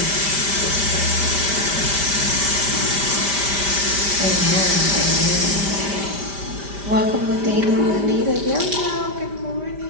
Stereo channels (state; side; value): late; left; 5.1 ms